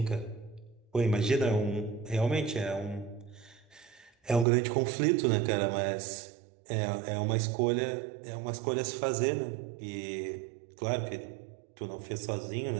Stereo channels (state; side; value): drops out; left; at 4.5 s